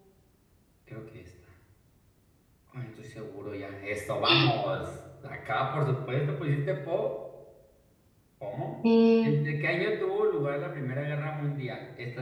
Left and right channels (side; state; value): both; identical; correlation 1.00